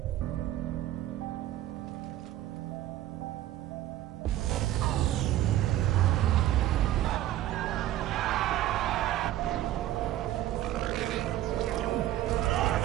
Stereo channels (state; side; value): quieter; left; 13.7 dB